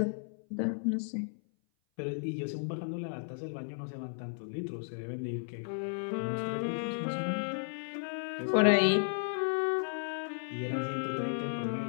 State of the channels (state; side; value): silent; right; 55 dB below the other